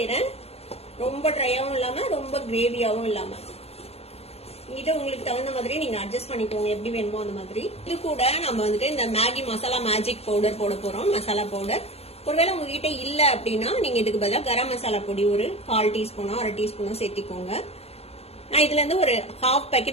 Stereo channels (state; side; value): late; right; 0.29 ms